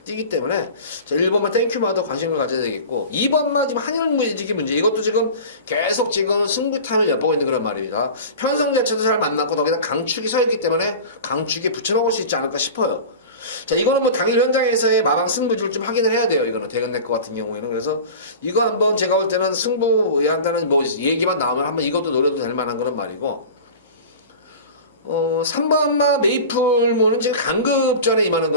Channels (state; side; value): inverted; both; correlation -0.35